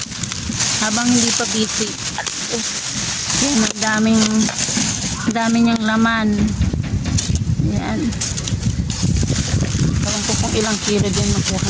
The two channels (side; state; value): both; identical; correlation 1.00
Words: Habang hindi pa busy. Yan, ang dami niyang laman. Yan. Alam ko kung ilang kilo din makuha